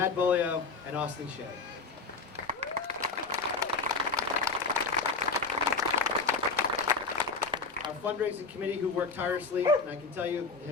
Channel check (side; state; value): right; quieter; 4.5 dB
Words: Bolio, and Austin Shea. Our fundraising committee, who worked tirelessly, and I can tell you,